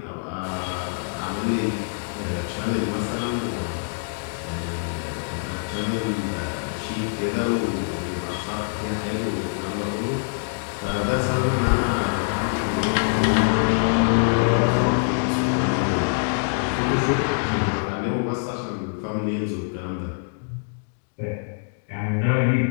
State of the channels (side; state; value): right; silent; digital silence